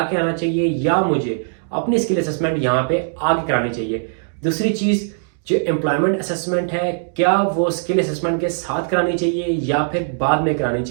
के आना चाहिए या मुझे अपनी स्किल असेसमेंट यहाँ पे आगे करानी चाहिए। दूसरी चीज़, जो एम्प्लॉयमेंट असेसमेंट है, क्या वो स्किल असेसमेंट के साथ करानी चाहिए या फिर बाद में करानी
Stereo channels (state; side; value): silent; left; digital silence